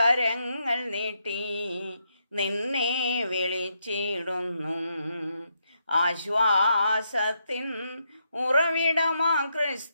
നീട്ടി നിന്നെ വിളിച്ചിടുന്നു. ആശ്വാസത്തിൻ ഉറവിടമാ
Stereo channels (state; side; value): inverted; both; correlation -0.79